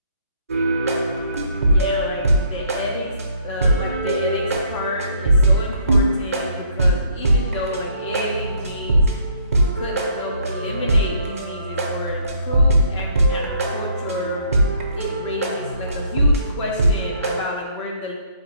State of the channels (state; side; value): inverted; both; correlation -0.64